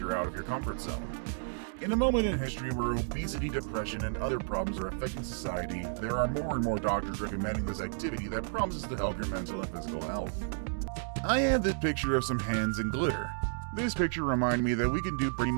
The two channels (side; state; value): left; silent; digital silence